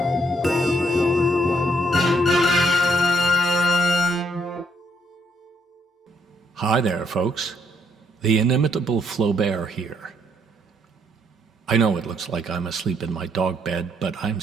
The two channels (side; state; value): both; normal; correlation 0.71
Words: Hi there, folks. The inimitable Flaubert here. I know it looks like I'm asleep in my dog bed, but I'm